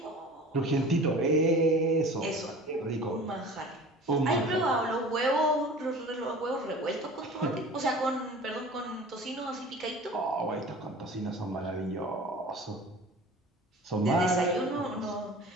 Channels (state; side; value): normal; both; correlation 0.41